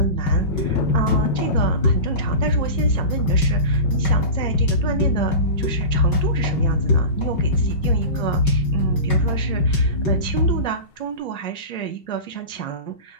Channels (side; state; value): right; late; 5.2 ms